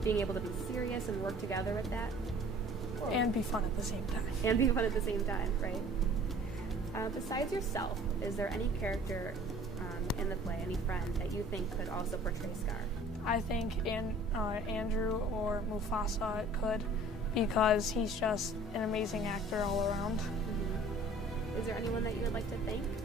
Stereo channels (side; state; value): both; normal; correlation 0.49